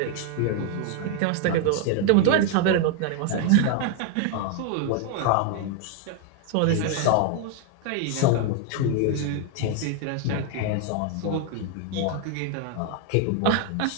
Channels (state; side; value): different; both; correlation 0.00